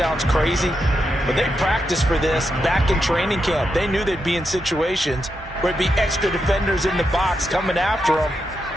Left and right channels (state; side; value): normal; both; correlation 0.85